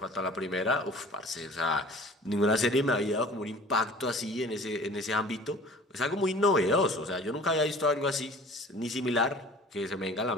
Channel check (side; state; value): both; normal; correlation 0.46